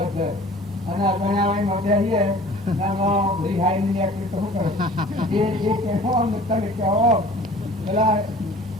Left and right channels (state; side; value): normal; both; correlation 0.46